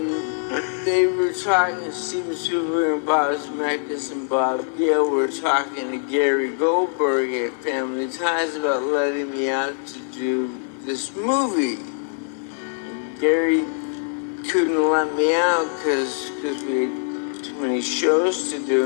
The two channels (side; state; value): right; silent; 63 dB below the other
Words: they were talking, Steven Spielberg and Bob Zemeckis and Bob Gale were talking to Gary Goldberg at Family Ties about letting me out to do this movie. And Gary couldn't let me out because we had too many shows to